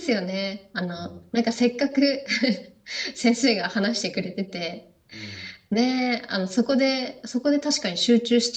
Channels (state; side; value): identical; both; correlation 1.00